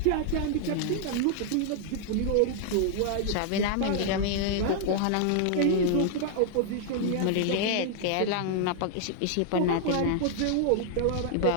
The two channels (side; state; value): both; different; correlation -0.01